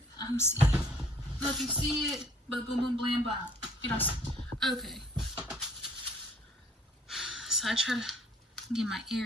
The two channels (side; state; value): both; normal; correlation 0.57